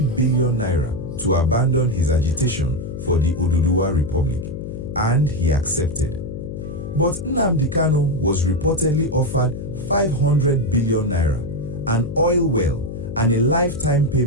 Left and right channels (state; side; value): noise; left; hum, 8 dB below the sound